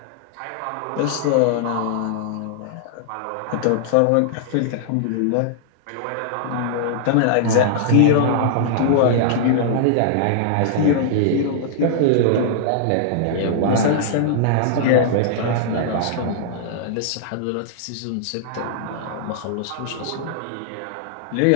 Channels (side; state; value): both; different; correlation -0.01